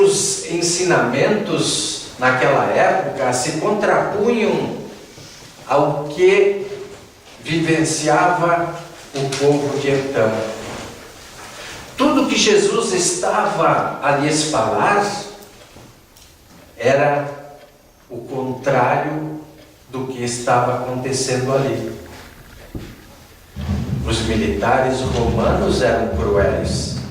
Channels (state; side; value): identical; both; correlation 1.00